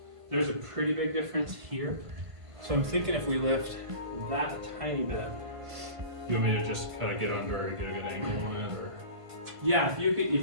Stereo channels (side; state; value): left; late; 1.5 ms